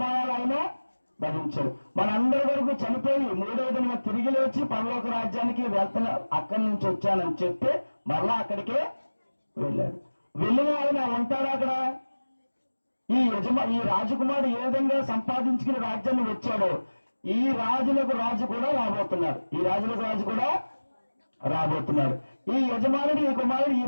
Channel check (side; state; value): both; inverted; correlation -1.00